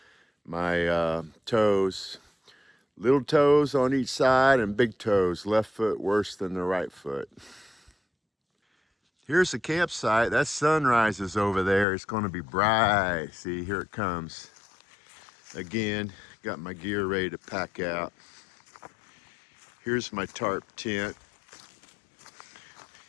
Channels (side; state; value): right; drops out; at 11.9 s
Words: my toes, little toes on each side and big toes. Left foot worse than the right foot. Here's the campsite. That sunrise is over there. It's gonna be bright. See, here it comes. Again, got my gear ready to pack out. Here's my tarp tent.